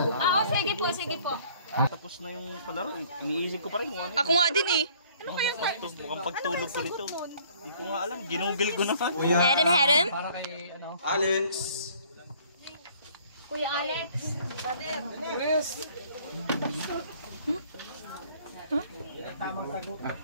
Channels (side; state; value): both; inverted; correlation -0.57